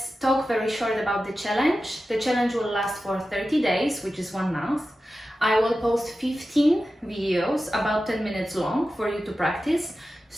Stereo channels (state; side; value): normal; both; correlation 0.93